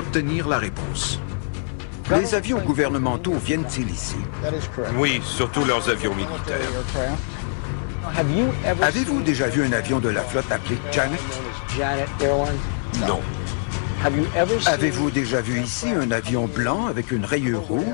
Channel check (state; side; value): silent; right; 59 dB below the other